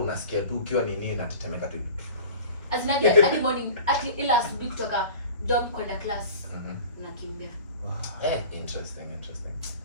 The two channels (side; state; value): both; inverted; correlation -0.41